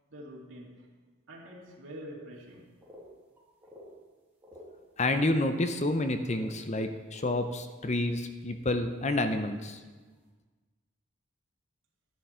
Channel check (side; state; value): both; normal; correlation 0.53